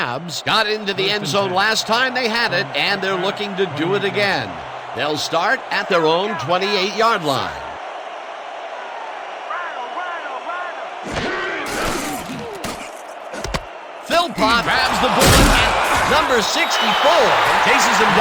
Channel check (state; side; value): identical; both; correlation 1.00